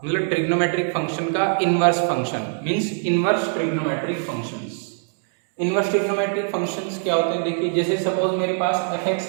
मतलब ट्रिग्नोमेट्रिक फंक्शन का inverse function means inverse trigonometric functions. Inverse trigonometric functions क्या होते हैं? देखिए, जैसे सपोज मेरे पास fx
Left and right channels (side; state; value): left; silent; 64 dB below the other